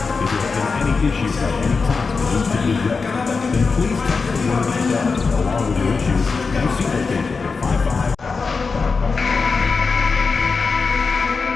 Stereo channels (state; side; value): quieter; right; 4.7 dB